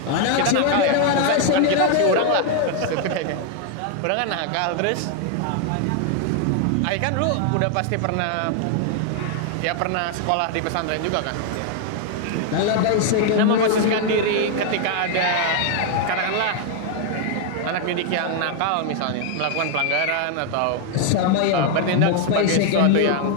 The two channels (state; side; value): different; both; correlation 0.00